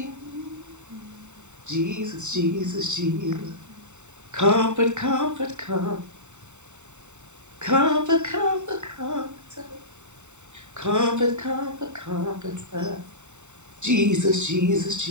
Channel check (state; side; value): late; left; 0.84 ms